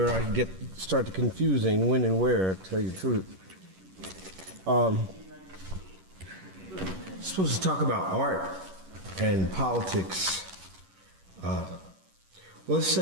I start to confusing when and where, to tell you the truth. Supposed to talk about art and politics. Well, let's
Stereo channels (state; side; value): late; left; 11 ms